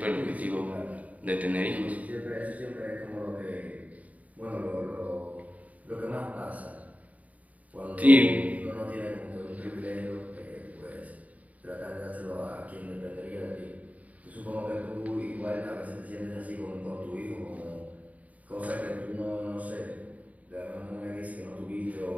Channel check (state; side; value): late; left; 0.071 ms